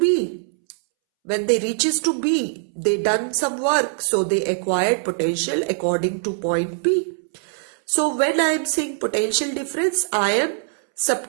when they reaches to B, they done some work. So they acquired potential according to point B. So when I am saying potential difference, I am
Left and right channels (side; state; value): left; silent; 64 dB below the other